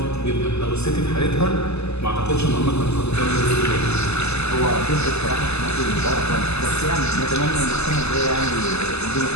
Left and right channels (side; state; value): right; late; 0.80 ms